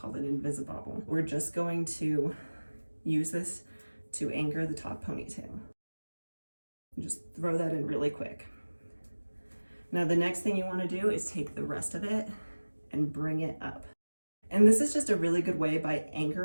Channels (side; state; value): both; inverted; correlation -1.00